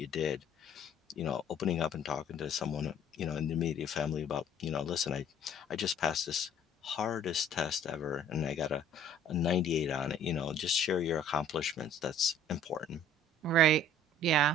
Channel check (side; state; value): both; normal; correlation 0.54